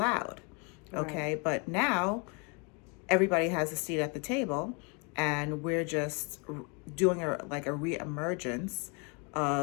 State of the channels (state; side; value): quieter; right; 33.0 dB